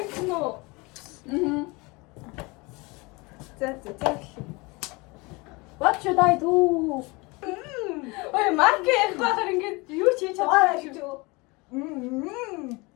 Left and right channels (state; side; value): quieter; right; 25.7 dB